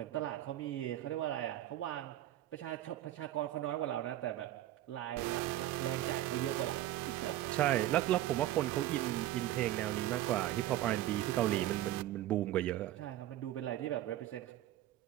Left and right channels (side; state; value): left; quieter; 14.0 dB